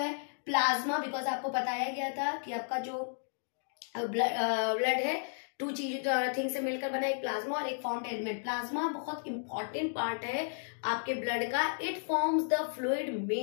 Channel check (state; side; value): silent; right; digital silence